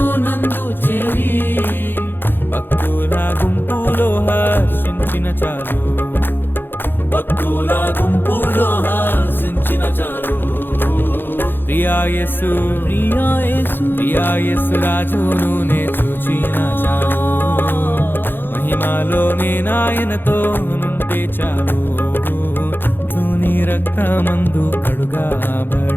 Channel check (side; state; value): right; late; 0.099 ms